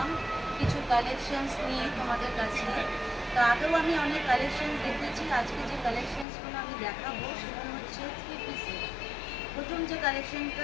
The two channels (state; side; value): drops out; right; at 6.2 s